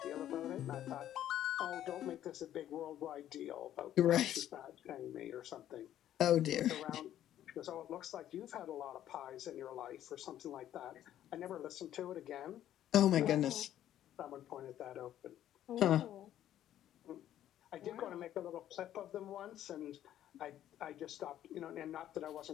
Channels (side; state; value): right; quieter; 11.7 dB